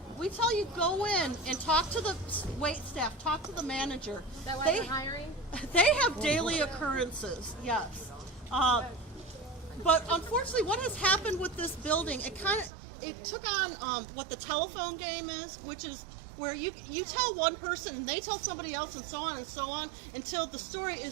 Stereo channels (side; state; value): left; drops out; at 12.7 s